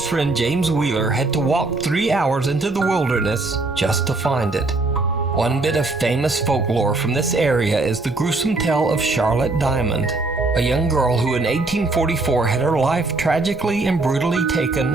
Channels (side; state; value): left; quieter; 3.2 dB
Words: friend James Wheeler had to walk 3 hours into the wilderness just to find it. One bit of famous folklore from this area is the gruesome tale of Charlotte Diamond, a young girl who in 1844 had her life tragically and brutally taken